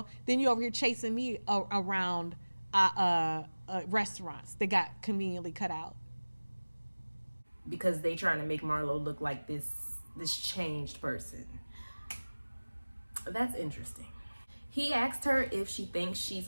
then you over here chasing me around restaurants that got conveniently cut out. Because they trying to make Marlo look like this changed person. That's interesting. He asked her if she thinks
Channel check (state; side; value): inverted; both; correlation -1.00